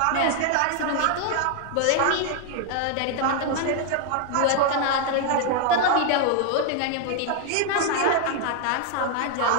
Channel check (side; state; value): both; different; correlation 0.00